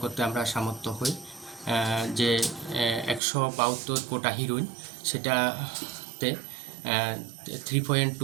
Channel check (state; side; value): drops out; left; at 3.2 s